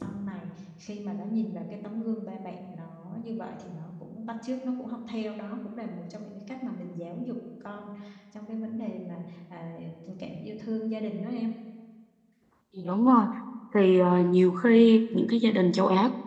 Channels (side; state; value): both; identical; correlation 1.00